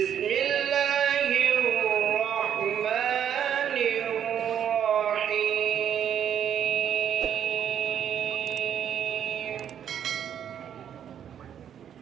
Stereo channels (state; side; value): quieter; left; 9.2 dB